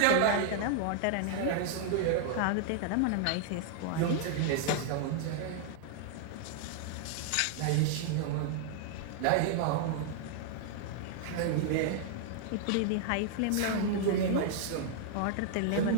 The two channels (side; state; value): both; different; correlation -0.01